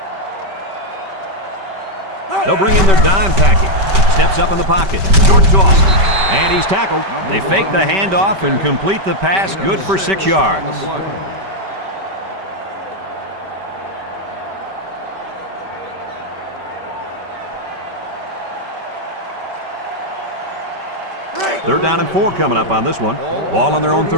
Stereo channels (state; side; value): late; left; 5.2 ms